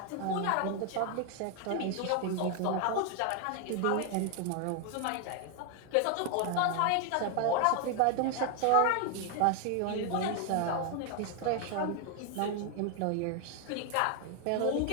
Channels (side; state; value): both; different; correlation 0.00